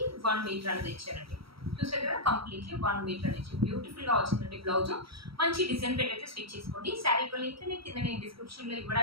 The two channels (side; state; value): left; late; 0.75 ms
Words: 1 మీటర్ అనేది ఇచ్చారండి. చూసారు కదా, కంప్లీట్లీ 1 మీటర్ అనేది బ్యూటిఫుల్ గా వచ్చిందండి. బ్లౌజ్ మంచి డిజైన్ పెట్టి అయితే స్టిచ్ చేసుకోండి. శారీ లింక్ కింద నేను డిస్క్రిప్షన్ లో